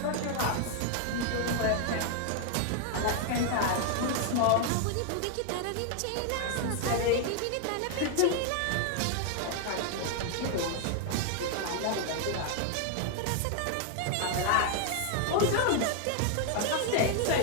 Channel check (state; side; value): different; both; correlation 0.00